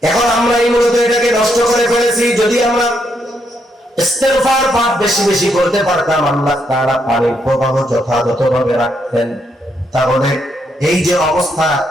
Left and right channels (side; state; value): both; normal; correlation 0.77